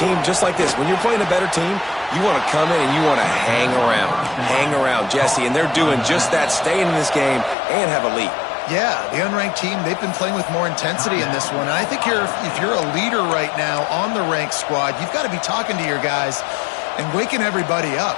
team, just like this, when you're playing a better team, you want to come in and you want to hang around. Hang around, Jesse. And they're doing just that, staying in this game and have a lead. Yeah, the unranked team, they've been playing with more intensity in this one. And I think if you're a leader right now on the ranked squad, you've got to be talking to your guys and waking everybody up.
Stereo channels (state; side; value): drops out; right; at 7.6 s